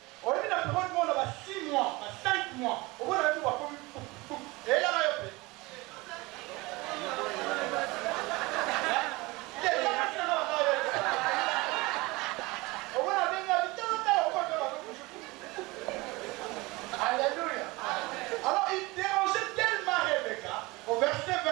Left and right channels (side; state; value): left; quieter; 22.9 dB